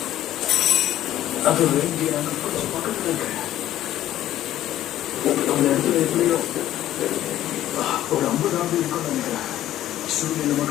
அது வேண்டிய நாங்கள் கொஞ்சம் பக்கத்தில் இருக்கேன். அந்த இடத்துல எப்படியோ ஒரு 50 ஆண்டு இருக்கும்னு நினைக்கிறேன். சூரியன்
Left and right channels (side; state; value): right; quieter; 13.1 dB